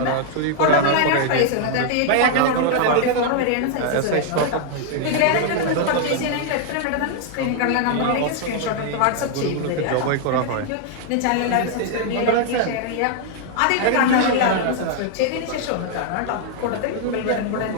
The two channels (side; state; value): both; different; correlation 0.00